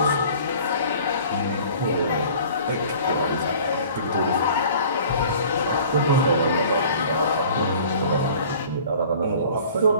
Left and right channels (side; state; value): both; inverted; correlation -0.47